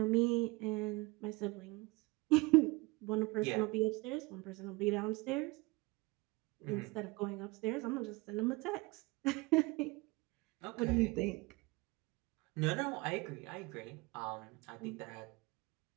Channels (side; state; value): left; quieter; 24.5 dB